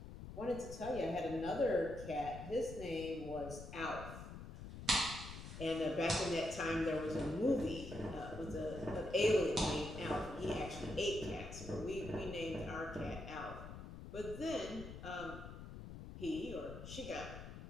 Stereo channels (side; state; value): left; noise; rumble, 10 dB below the sound